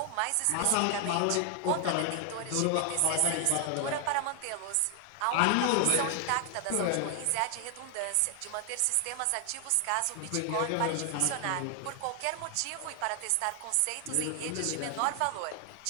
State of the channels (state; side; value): different; both; correlation 0.00